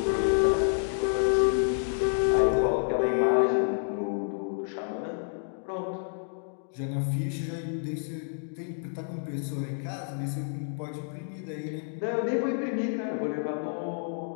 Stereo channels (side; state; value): right; silent; digital silence